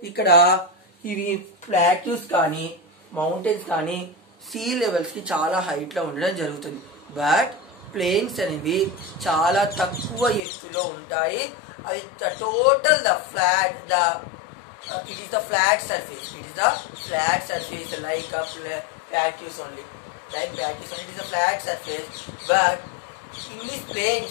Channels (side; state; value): right; drops out; at 10.4 s